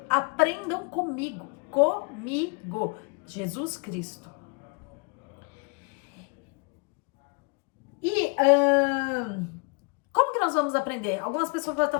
aprendam comigo, Jesus Cristo. E como que nós vamos aprender? Algumas pessoas vão estar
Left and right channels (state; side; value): quieter; right; 32.8 dB